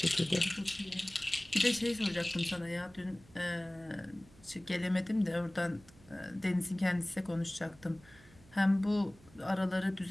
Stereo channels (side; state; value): right; noise; hum, 25 dB below the sound